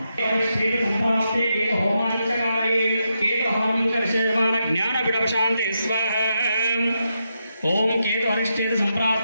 సంప్రాప్తే కేతు హోమాంచకారయే కేతు హోమంకర్షయమాన జ్ఞాన విడవశాంతి స్వాహ. ఓం కేతు అరిష్టేత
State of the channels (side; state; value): both; inverted; correlation -0.84